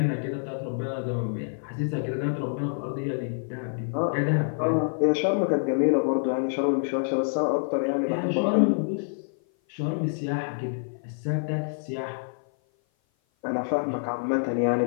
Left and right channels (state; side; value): silent; right; 56 dB below the other